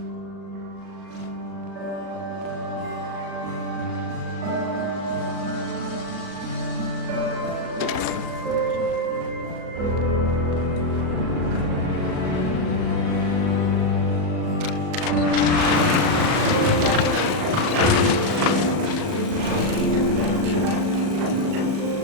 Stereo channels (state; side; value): late; left; 38 ms